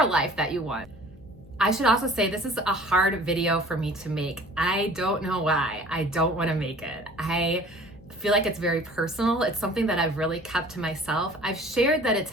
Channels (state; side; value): noise; left; hum, 23 dB below the sound